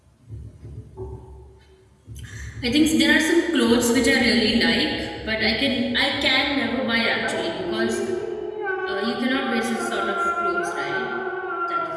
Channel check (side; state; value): both; identical; correlation 1.00